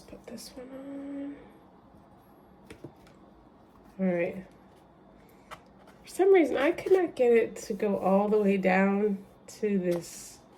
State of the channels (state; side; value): identical; both; correlation 1.00